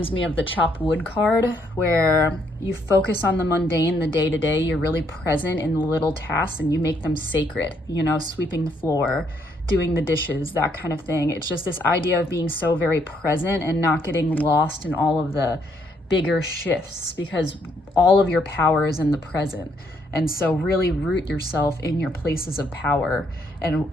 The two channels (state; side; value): normal; both; correlation 0.71